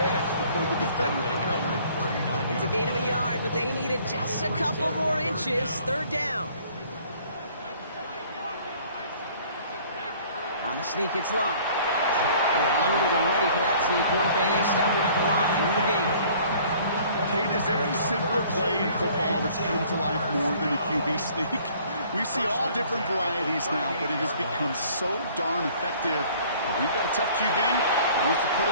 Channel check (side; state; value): both; inverted; correlation -0.55